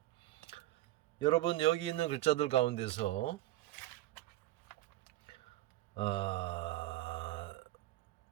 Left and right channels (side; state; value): left; quieter; 16.2 dB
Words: 여러분, 여기 있는 글자들 가운데서